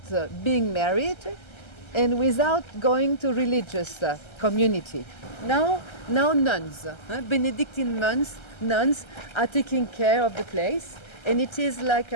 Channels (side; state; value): right; late; 1.3 ms